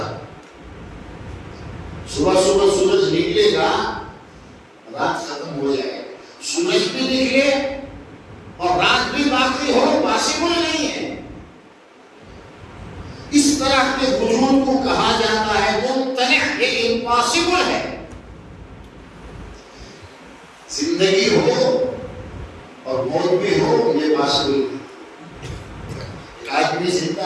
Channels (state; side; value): identical; both; correlation 1.00